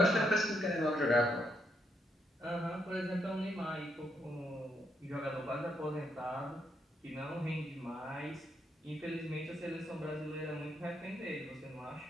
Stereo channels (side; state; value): both; normal; correlation 0.77